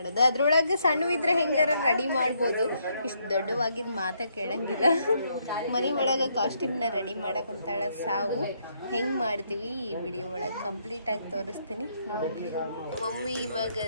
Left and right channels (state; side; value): inverted; both; correlation -0.74